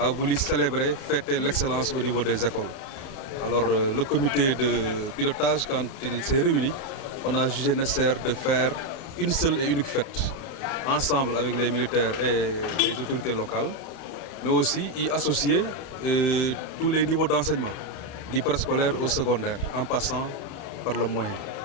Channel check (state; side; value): late; right; 31 ms